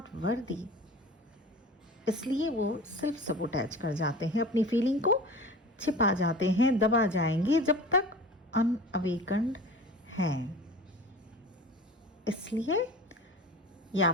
worthy. इसलिए वो सेल्फ सबोटैज कर जाते हैं, अपनी फीलिंग को छिपा जाते हैं, दबा जाएंगे जब तक अनअवेकन्ड हैं। इसलिए ये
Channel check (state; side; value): normal; both; correlation 0.38